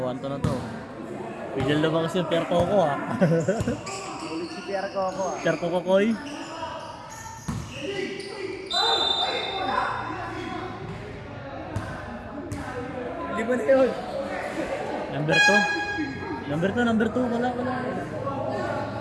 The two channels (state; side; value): identical; both; correlation 1.00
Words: na to. Pidal na ba kasi yung Pierre Coco ha? Ulit si Pierre Coco ah. Pierre Coco Koy. Lima na yun. Number 2. Wala.